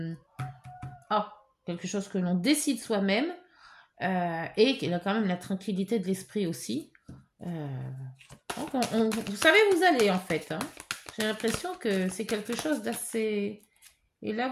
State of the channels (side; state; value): both; identical; correlation 1.00